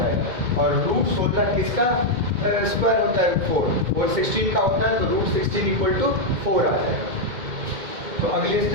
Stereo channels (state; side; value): late; left; 2.1 ms